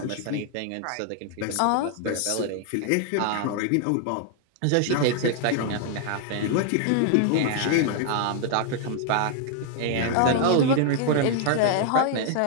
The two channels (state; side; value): different; both; correlation 0.00